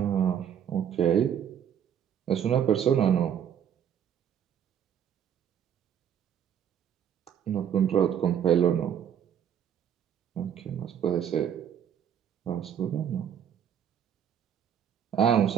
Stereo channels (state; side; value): quieter; left; 9.0 dB